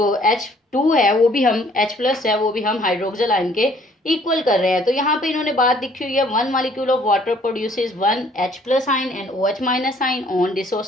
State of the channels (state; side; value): normal; both; correlation 0.60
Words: H2 है वो भी हम H प्लस है वो भी हम हाइड्रोक्सिल आयन के इक्वल कर रहे हैं, तो यहाँ पे इन्होंने बात लिखी हुई है, 1 molecule of water produces 1 H plus ion and OH minus ion on